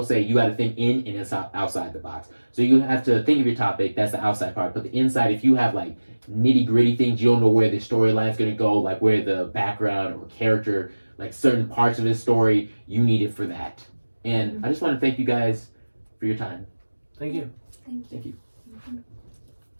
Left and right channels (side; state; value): both; inverted; correlation -1.00